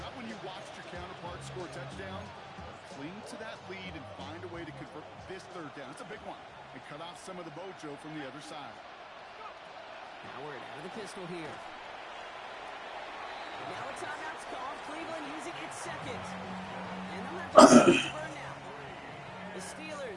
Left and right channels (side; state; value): both; identical; correlation 1.00